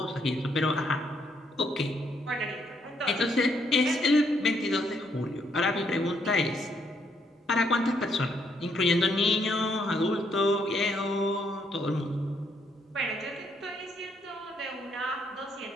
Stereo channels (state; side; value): normal; both; correlation 0.72